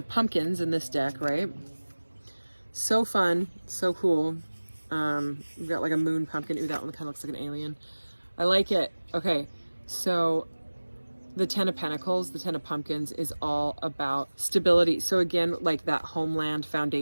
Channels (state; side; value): inverted; both; correlation -1.00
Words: Pumpkins in this deck, right? So fun, so cool. We've got like a moon pumpkin. Ooh, that one kind of looks like an alien. I like it. Okay, so the 10 of Pentacles, the 10 of Pumpkins is all about stability. So again, like that homeland